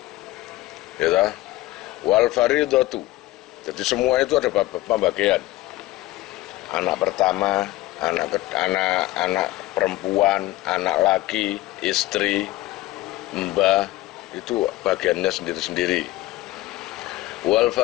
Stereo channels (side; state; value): right; quieter; 17.5 dB